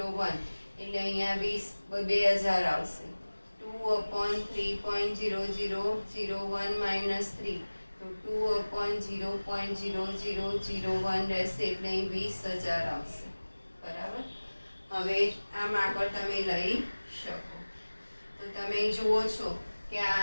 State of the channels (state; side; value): inverted; both; correlation -1.00